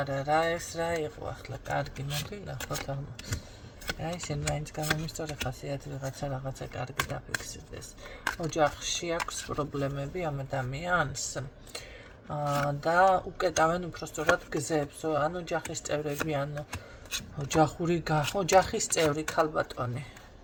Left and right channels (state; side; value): identical; both; correlation 1.00